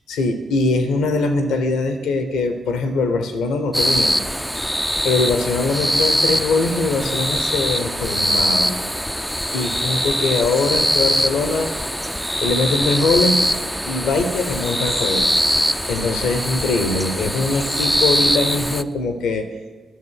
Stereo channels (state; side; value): normal; both; correlation 0.81